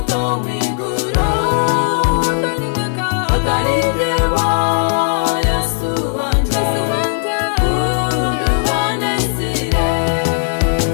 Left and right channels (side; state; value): right; silent; digital silence